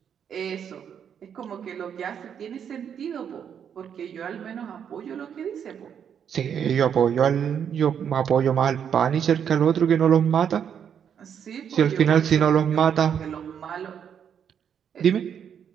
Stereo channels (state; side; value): quieter; left; 8.2 dB